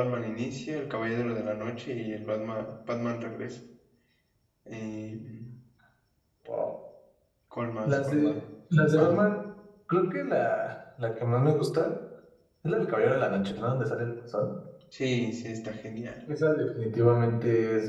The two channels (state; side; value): identical; both; correlation 1.00